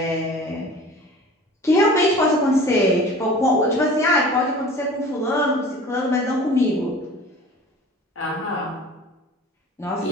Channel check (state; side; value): normal; both; correlation 0.42